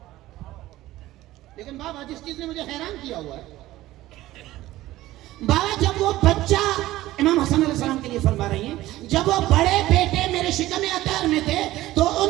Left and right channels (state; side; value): quieter; left; 16.2 dB